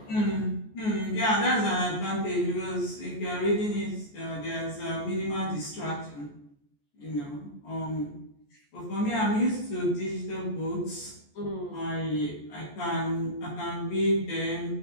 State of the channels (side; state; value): right; late; 14 ms